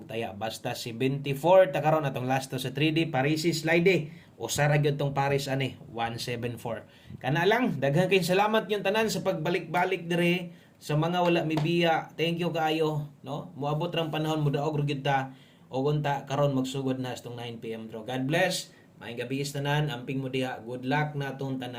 taya basta si 24 ta karon atong last to sa 3D Parisi slide usa ra gyud tong Paris ani 174 kana lang daghan kay salamat yung tanan sa pagbalik-balik dire sa mga wala mibiya thank you kaayo no moabot rang panahon mo daog ra gyud ta o unta karon magsugod na sa 9 PM draw. God bless. Maayong gabi is tanan, amping mo diha. Good luck na atong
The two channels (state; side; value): identical; both; correlation 1.00